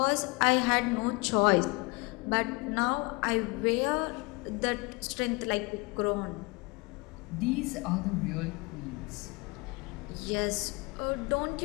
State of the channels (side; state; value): right; quieter; 26.3 dB